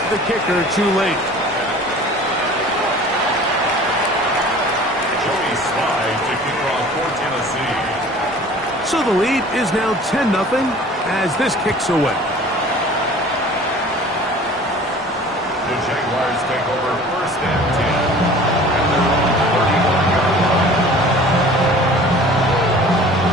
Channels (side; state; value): both; normal; correlation 0.46